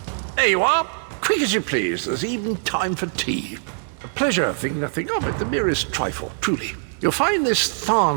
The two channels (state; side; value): silent; left; 64 dB below the other